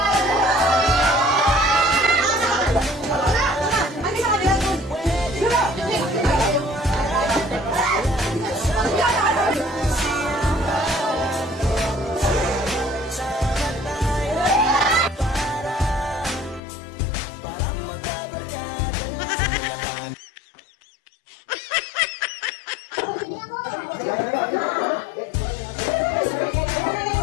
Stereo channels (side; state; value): right; drops out; at 16.6 s